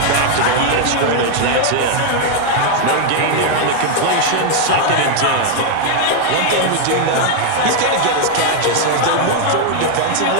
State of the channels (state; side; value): different; both; correlation 0.00